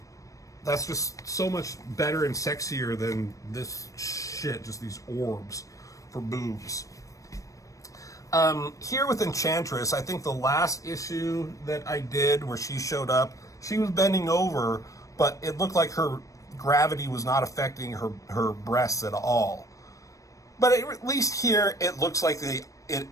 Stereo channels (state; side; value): late; right; 0.16 ms